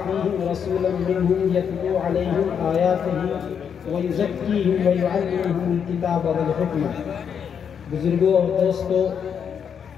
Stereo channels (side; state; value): right; quieter; 7.5 dB